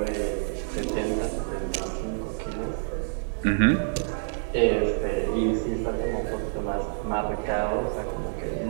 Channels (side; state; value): left; silent; digital silence